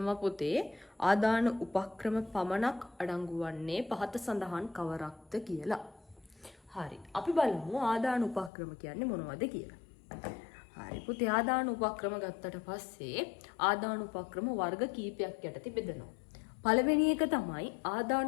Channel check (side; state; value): right; drops out; at 8.5 s